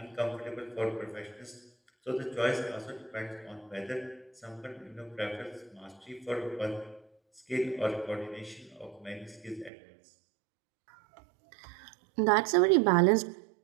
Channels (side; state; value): left; drops out; at 9.7 s